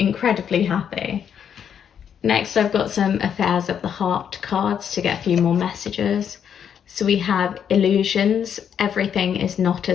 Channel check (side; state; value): right; quieter; 8.3 dB